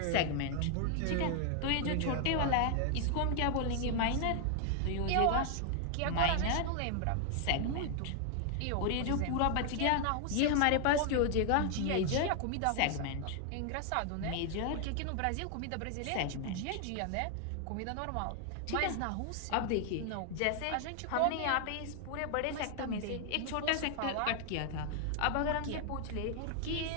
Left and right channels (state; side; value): different; both; correlation 0.00